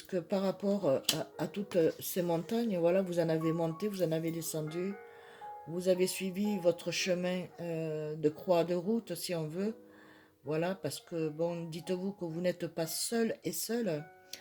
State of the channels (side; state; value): both; identical; correlation 1.00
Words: par rapport à toutes ces montagnes, voilà, vous en avez monté, vous en avez descendu, vous avez suivi votre chemin de croix de route, si on veut. Voilà, parce que, bon, dites-vous que vous n'êtes pas seul et seul,